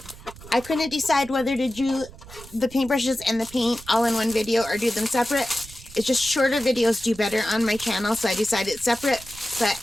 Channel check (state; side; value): noise; right; rumble, 18 dB below the sound